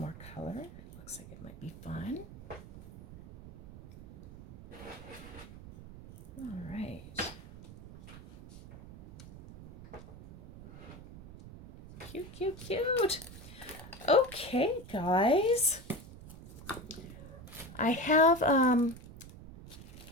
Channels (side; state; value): right; noise; rumble, 16 dB below the sound